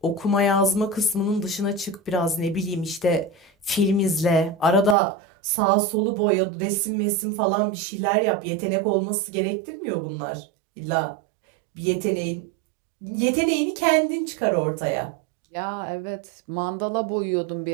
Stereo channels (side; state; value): left; drops out; at 5.0 s